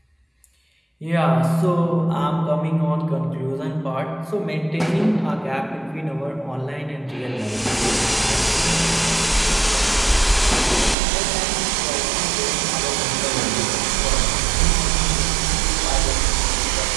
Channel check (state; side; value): drops out; left; at 11.0 s